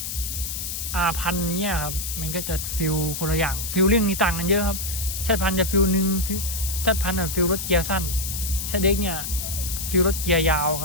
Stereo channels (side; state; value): left; noise; hiss, 5 dB below the sound